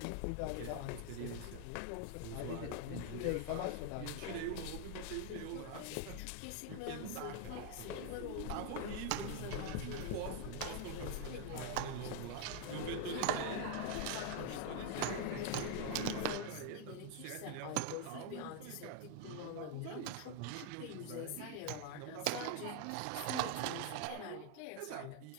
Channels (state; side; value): different; both; correlation 0.01